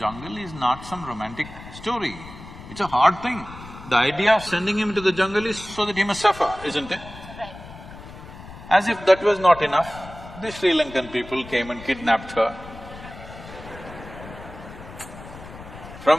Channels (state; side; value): noise; left; rumble, 15 dB below the sound